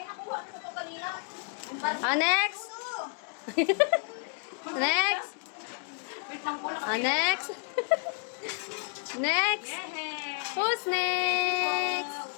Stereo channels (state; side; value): quieter; right; 38.7 dB